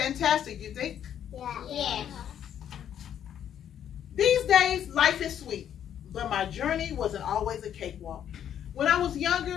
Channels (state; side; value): quieter; right; 9.7 dB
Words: you think? Yes. These days, life is sweet, but my journey wasn't always a cakewalk. When I was